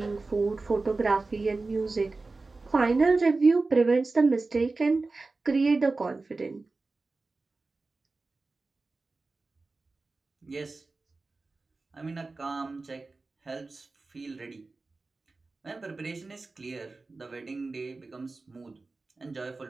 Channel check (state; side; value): quieter; left; 3.6 dB